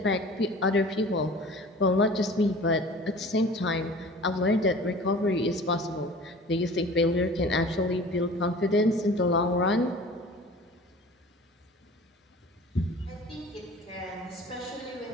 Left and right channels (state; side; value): normal; both; correlation 0.43